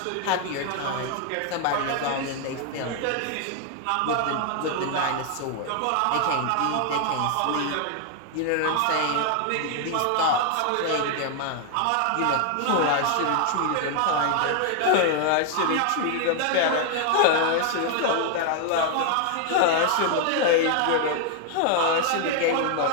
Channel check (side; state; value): both; different; correlation 0.00